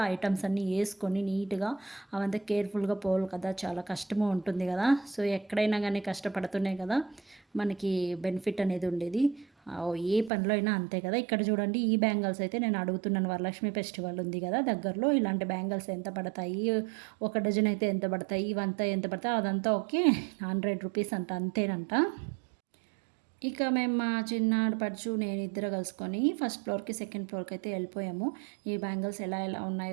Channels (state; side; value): drops out; left; at 10.3 s